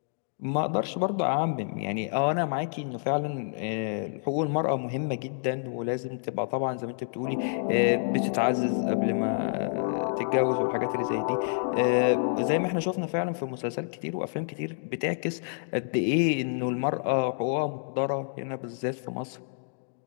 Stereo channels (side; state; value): right; silent; digital silence